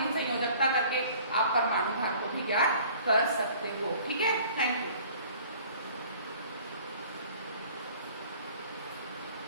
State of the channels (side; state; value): both; inverted; correlation -0.51